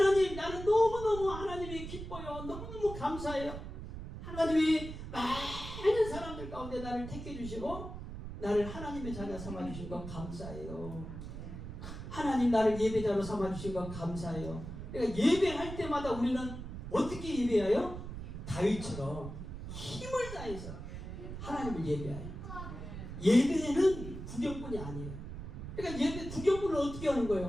나는 너무너무 하나님이 기뻐요. 너무너무 감사해요. 하나님이 많은 사람들 가운데 나를 택해 주시고 나를 하나님의 자녀 삼아 주신 것 감사해요. 하나님 나를 예배자로 삼아 주신 것 감사해요. 그러니까 예배할 때마다 우리는 어떻게 예배해요? 다윗처럼 힘을 다해서 하나님을 예배해요. 예배는 구경꾼이 아니에요. 그러니까 예배 구경꾼은 어떻게 하는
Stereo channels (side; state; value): right; noise; rumble, 9 dB below the sound